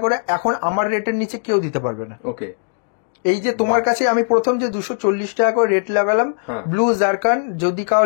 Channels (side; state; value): right; silent; digital silence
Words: করে এখন আমার রেটের নিচে কেউ দিতে পারবে না। ওকে, এই যে তোমার কাছে আমি প্রথম যে 240 টাকা করে রেট লাগালাম, ব্লু জারকান, যদি